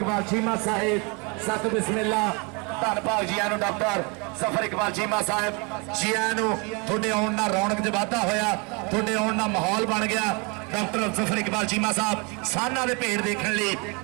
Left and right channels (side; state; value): left; quieter; 31.3 dB